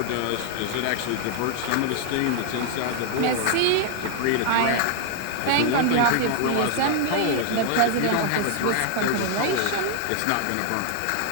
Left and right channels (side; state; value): both; different; correlation 0.00